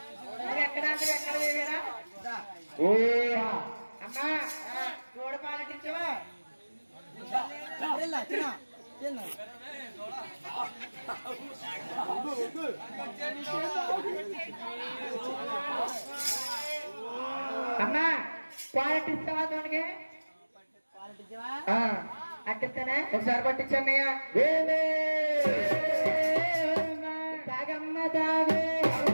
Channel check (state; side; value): inverted; both; correlation -1.00